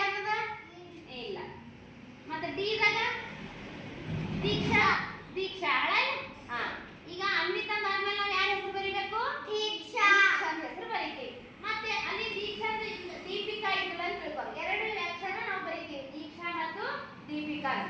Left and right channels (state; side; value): identical; both; correlation 1.00